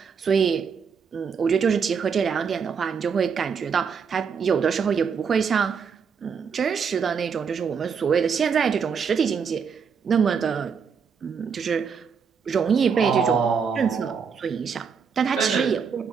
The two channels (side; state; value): left; quieter; 6.3 dB